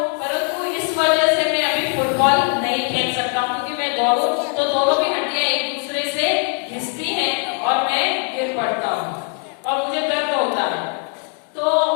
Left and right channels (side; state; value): right; quieter; 37.7 dB